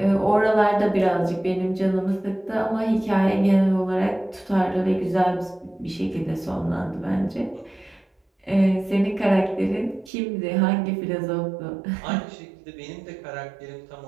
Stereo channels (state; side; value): drops out; left; at 10.1 s